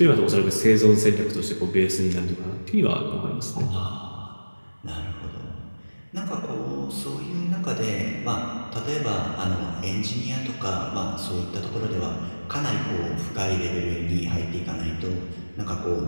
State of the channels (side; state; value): both; inverted; correlation -1.00